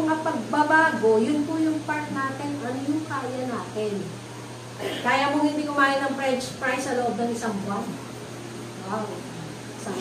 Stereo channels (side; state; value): both; identical; correlation 1.00